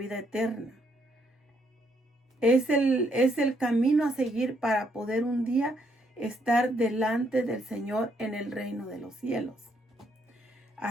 eterna, es el camino a seguir para poder un día estar delante del Señor en el reino de los cielos.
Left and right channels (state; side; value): normal; both; correlation 0.72